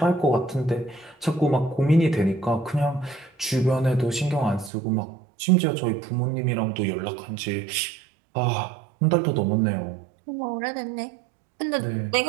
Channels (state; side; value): drops out; left; at 4.7 s